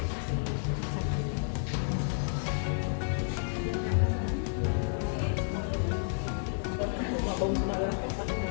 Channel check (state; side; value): silent; right; digital silence